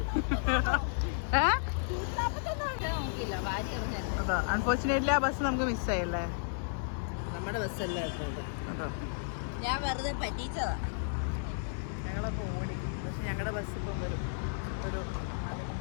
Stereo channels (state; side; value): silent; right; digital silence